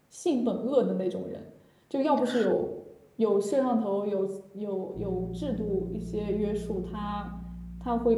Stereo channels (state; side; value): identical; both; correlation 1.00